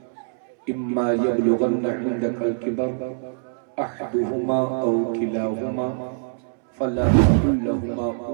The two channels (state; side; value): silent; left; 63 dB below the other